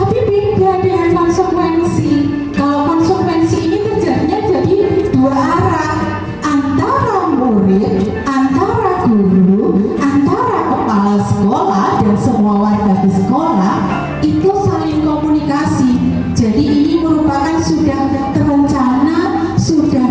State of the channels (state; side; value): identical; both; correlation 1.00